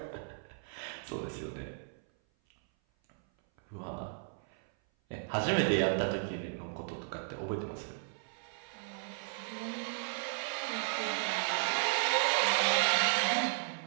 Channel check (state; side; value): silent; left; 55 dB below the other